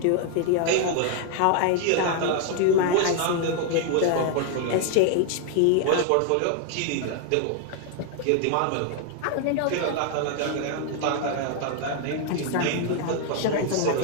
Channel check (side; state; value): both; different; correlation 0.00